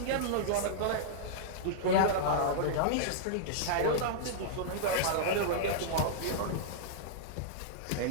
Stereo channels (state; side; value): different; both; correlation -0.02